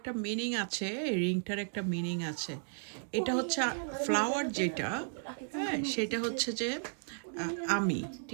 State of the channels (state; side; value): silent; left; digital silence